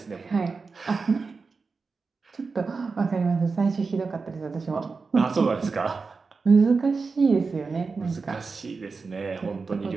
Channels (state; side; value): quieter; left; 4.5 dB